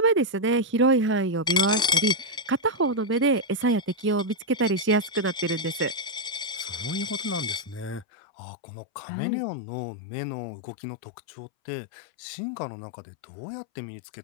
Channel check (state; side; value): drops out; right; at 8.1 s